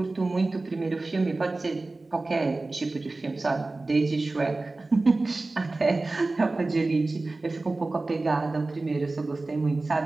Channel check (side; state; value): left; quieter; 3.2 dB